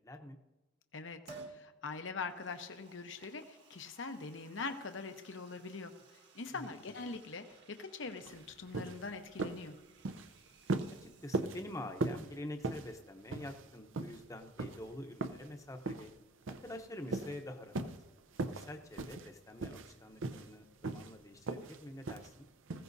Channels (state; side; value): normal; both; correlation 0.39